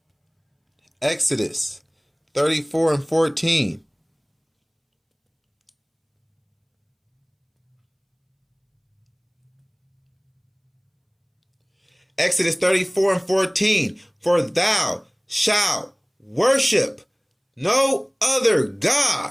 34 and 14. Exodus 34 and 14. For thou shalt worship no other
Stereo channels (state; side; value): identical; both; correlation 1.00